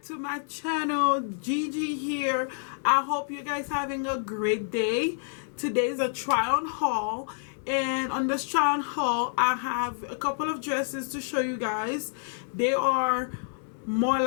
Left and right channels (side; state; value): right; silent; digital silence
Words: to my channel. Gigi here. I hope you guys having a great day. Today's a try on haul, and on this try on haul I have a couple of dresses to show you guys. They are more